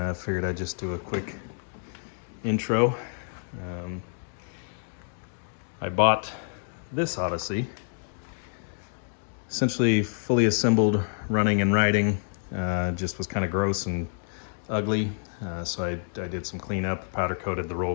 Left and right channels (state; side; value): silent; right; digital silence